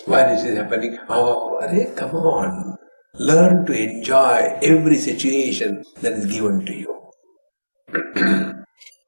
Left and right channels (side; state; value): both; inverted; correlation -1.00